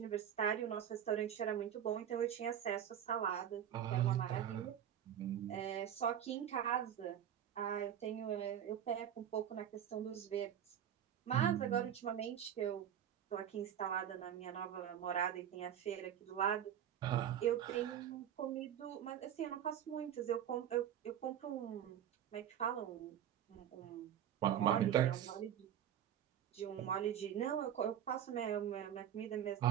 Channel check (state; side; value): quieter; left; 9.9 dB